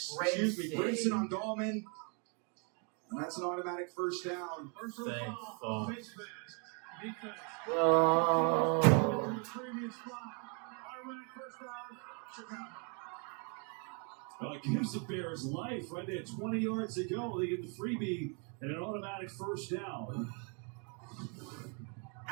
on Dahlman. And that's an automatic first down. Thank fuck. Oh. Well, it gives the Bears life right there. 20 yards to go. They get the freebie and an automatic first down.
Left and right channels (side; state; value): left; quieter; 36.7 dB